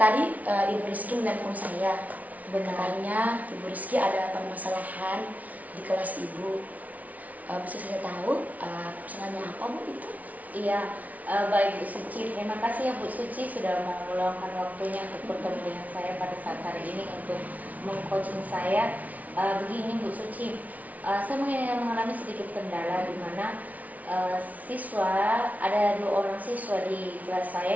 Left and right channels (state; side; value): late; left; 0.072 ms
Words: Ibu Rizky menelpon saya. Benarnya Ibu Rizky ada permasalahan di kelas Ibu. Bisa saya tahu permasalahannya apa Bu itu? Iya, baik Bu Suci. Terima kasih ya Bu Suci sudah mau meluangkan waktunya untuk bertemu dengan saya pada saat hari ini untuk mengcoaching saya. Begini Bu Suci, saya mengalami sedikit kendala di mana ada 2 orang siswa di kelas